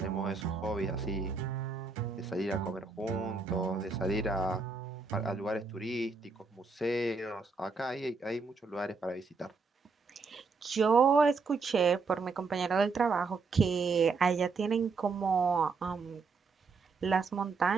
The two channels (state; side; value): quieter; left; 4.5 dB